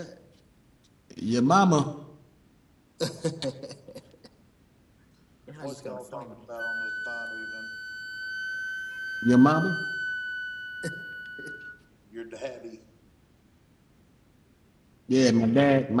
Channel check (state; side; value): identical; both; correlation 1.00